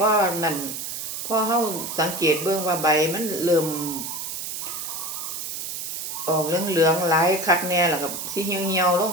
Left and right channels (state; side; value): noise; right; hiss, 5 dB below the sound